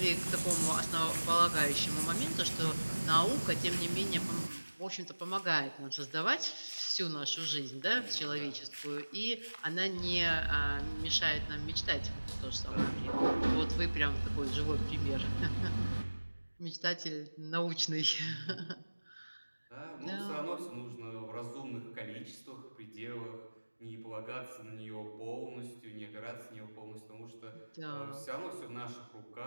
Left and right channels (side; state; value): both; inverted; correlation -1.00